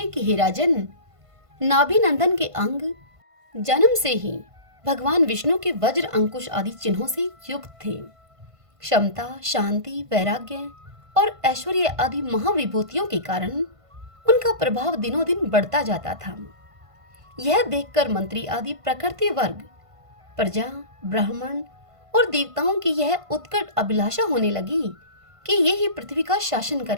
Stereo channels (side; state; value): left; late; 1.5 ms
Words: कि हे राजन, नाभि नंदन के अंग जन्म से ही भगवान विष्णु के वज्र अंकुश आदि चिन्हों से युक्त थे। क्षमता, शांति, वैराग्य और ऐश्वर्य आदि महाविभूतियों के कारण उनका प्रभाव दिनों दिन बढ़ता जाता था। यह देखकर मंत्री आदि प्रकृति वर्ग, प्रजा, ब्राह्मण और देवताओं की यह उत्कट अभिलाषा होने लगी कि ये ही पृथ्वी का शासन